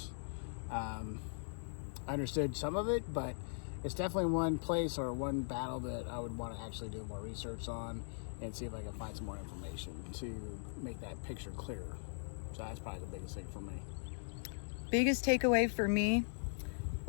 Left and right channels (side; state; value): right; silent; digital silence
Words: I understood some of it, but it's definitely one place or one battle that I would want to actually do more research on and see if I can find some more information to make that picture clearer. So that's probably the biggest thing for me. Biggest takeaway for me,